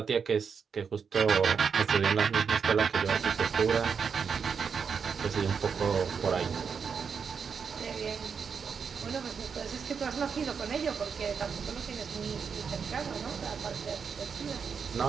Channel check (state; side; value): quieter; left; 6.2 dB